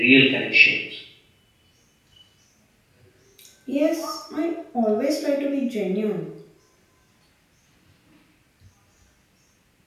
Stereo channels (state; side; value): identical; both; correlation 1.00